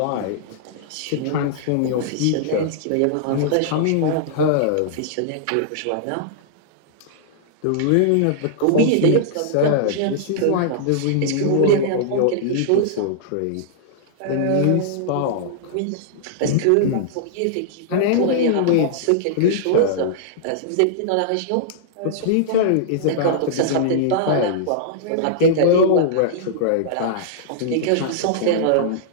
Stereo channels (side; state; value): both; different; correlation -0.02